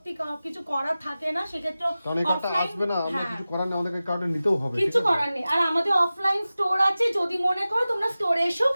কিছু করার থাকে না, সেক্ষেত্রে কারণ এই কার্ডটা আসবে না, আমরা কিছু করার নেই, আমাদেরকে কার্ডটা নিতেও হবে, কিছু করার নেই। আর আমাদের অফলাইন স্টোর আছে, যদি মনে করো তোমরা স্টোরে এসেও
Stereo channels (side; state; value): both; inverted; correlation -0.96